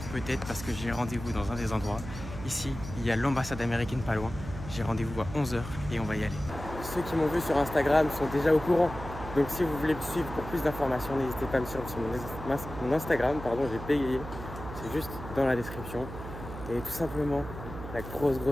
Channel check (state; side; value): noise; right; hum, 10 dB below the sound